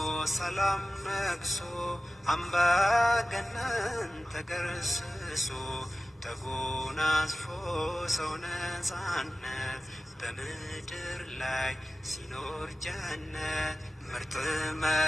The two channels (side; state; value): both; normal; correlation 0.96